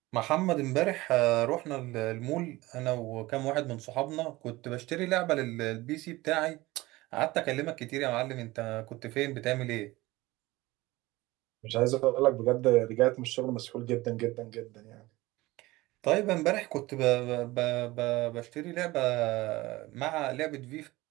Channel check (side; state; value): left; quieter; 19.8 dB